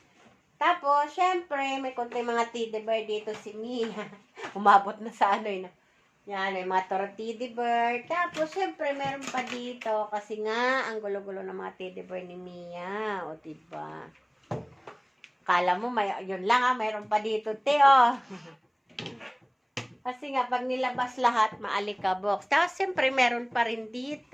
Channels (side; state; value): both; identical; correlation 1.00